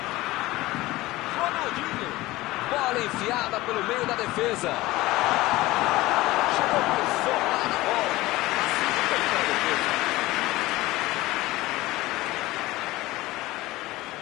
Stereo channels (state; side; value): quieter; right; 18.7 dB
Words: Ronaldinho. Bola enfiada pelo meio da defesa. Chegou por fora da bola. Facilitou para a defesa.